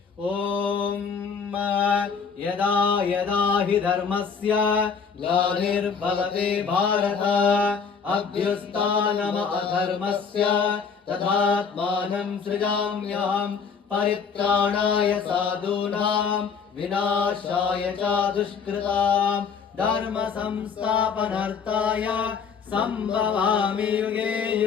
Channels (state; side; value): quieter; right; 6.0 dB